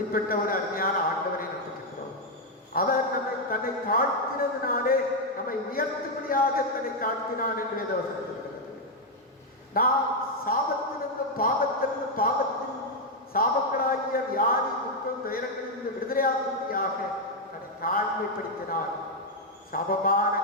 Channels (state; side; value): normal; both; correlation 0.01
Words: ஒரு அருமையான ஆண்டவரை நம்பிக்கிறோம். அவர் நம்மை தன்னை தாழ்த்தினதினாலே நம்மை உயர்த்தும்படியாக தன்னை தாழ்த்தினார் என்று வேதவசனம் சொல்கிறது. நாம் சாபத்திலிருந்தும் பாவத்திலிருந்து பாவத்தின் சாபங்களாகிய வியாதி துக்கம் துயரங்களிலிருந்து விடுதலையாகும்படியாக தன்னை தாழ்மைப்படுத்தினார். சாபமான